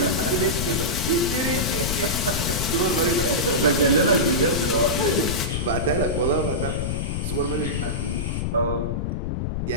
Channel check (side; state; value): left; noise; rumble, 1 dB below the sound